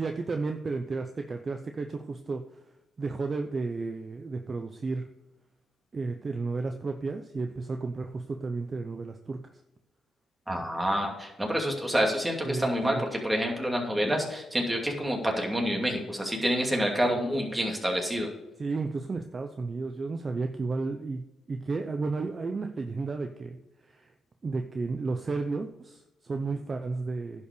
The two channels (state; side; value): normal; both; correlation 0.91